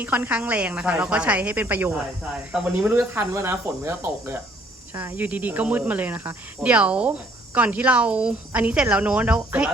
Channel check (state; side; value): normal; both; correlation 0.62